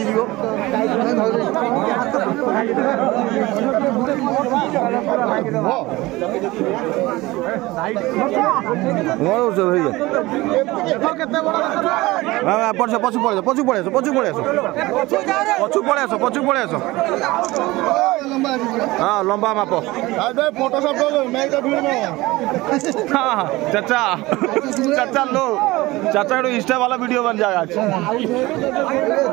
जीव पचू पड़े पचू पड़े पचू पड़े पचू पड़े पचू पड़े हाँ लंबा माप हाँ चाचा चाचा लो चाचा इंस्टा वाला वीडियो बन जाएगा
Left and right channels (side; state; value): left; quieter; 20.1 dB